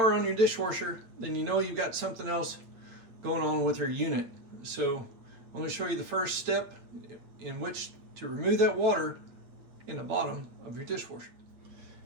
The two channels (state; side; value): late; left; 8.8 ms